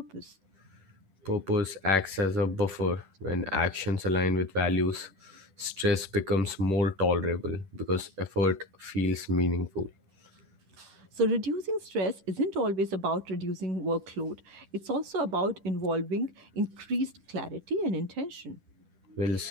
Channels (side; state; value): left; late; 10 ms